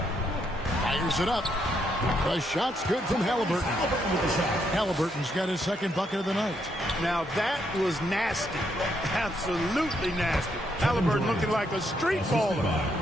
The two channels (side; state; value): both; normal; correlation 0.76